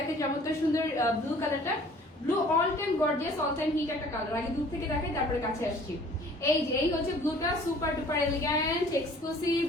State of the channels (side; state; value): both; normal; correlation 0.52